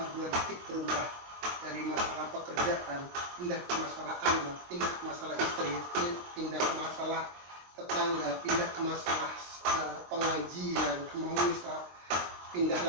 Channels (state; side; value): late; left; 23 ms